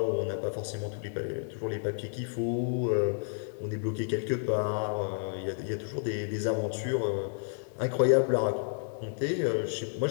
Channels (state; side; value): silent; right; digital silence